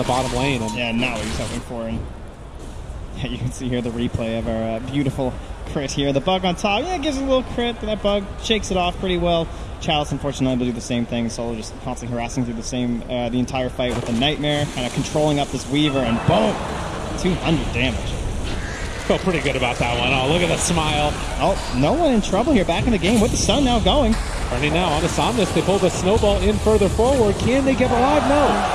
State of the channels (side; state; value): both; identical; correlation 1.00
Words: bottom lane. And yeah, now he's hoping for. And yeah, you can see here the replay of our beautiful crit here. The bug on top, yeah, gives it a little crit, but that bug shakes it off pretty well. Chalice, unfortunately, will do the same thing. Solo just constantly harassing through the entire fight with the Nightmare, kind of controlling up this Weaver, and boom, 200 damage. Felt pretty good about that one. Oh, look at the smile. Oh, no one in trouble here. Back in the game with the sun now going. Turning now on to Somnus. They pull the snowball in further forward. Can they get alive?